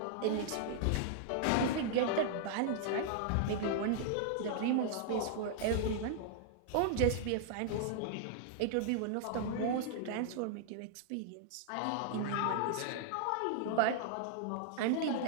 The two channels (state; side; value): different; both; correlation -0.01